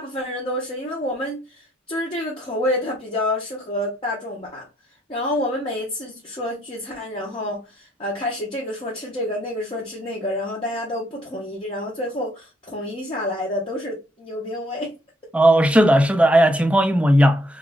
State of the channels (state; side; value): normal; both; correlation 0.71